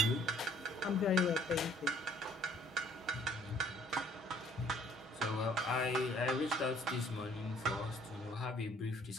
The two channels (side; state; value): both; normal; correlation 0.59